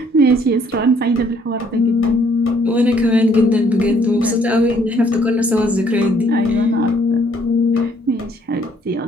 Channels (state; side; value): normal; both; correlation 0.64